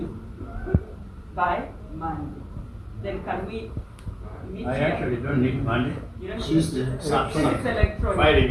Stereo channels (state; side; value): identical; both; correlation 1.00